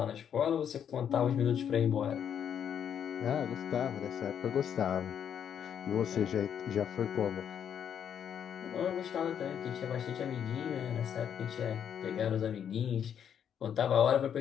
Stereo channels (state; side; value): quieter; right; 8.6 dB